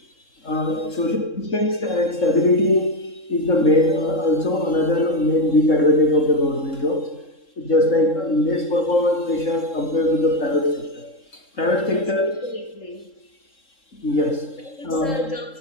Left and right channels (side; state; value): right; late; 3.7 ms